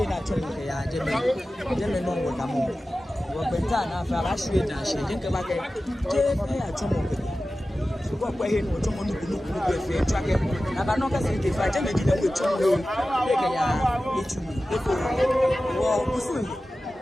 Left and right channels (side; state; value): both; normal; correlation 0.95